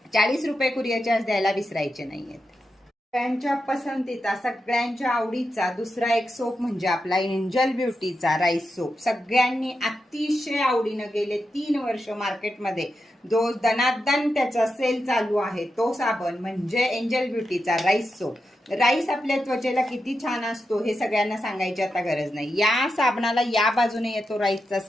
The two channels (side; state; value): both; normal; correlation 0.88